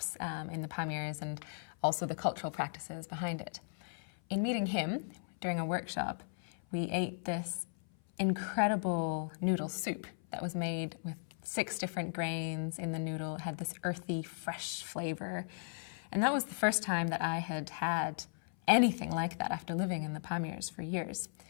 in the Pamirs and also the cultural practices behind it. In meeting him during a workshop, we ate this incredible noodle soup that was made with 6 different grains in the noodle. It had this earthy, fresh flavor. And that was the first time that I had had anything like that after living in the Pamirs for years.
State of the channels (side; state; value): right; silent; 54 dB below the other